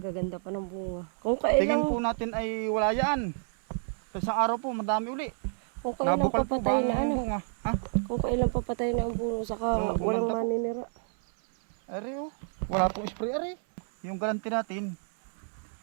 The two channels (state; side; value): silent; left; 58 dB below the other